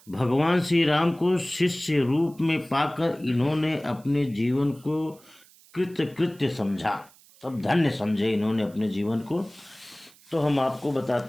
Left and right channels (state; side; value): noise; right; hiss, 27 dB below the sound